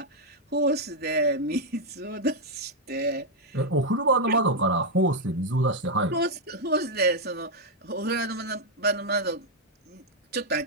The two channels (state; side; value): normal; both; correlation -0.01